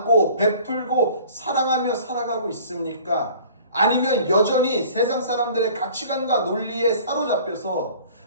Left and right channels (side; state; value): both; inverted; correlation -0.48